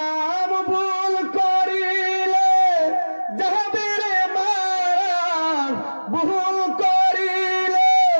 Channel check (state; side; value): inverted; both; correlation -1.00